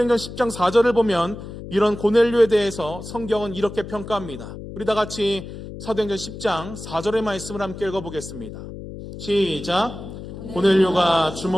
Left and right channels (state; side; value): noise; left; hum, 11 dB below the sound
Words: 10장 4절을 보면 이런 고넬료에 대해서 성경은 이렇게 평가합니다. 우리 다 같이 사도행전 10장 4절의 말씀을 함께 읽어보겠습니다. 시작. 고넬료가